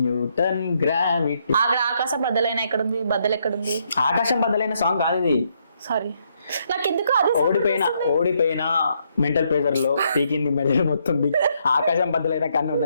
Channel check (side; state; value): both; inverted; correlation -0.74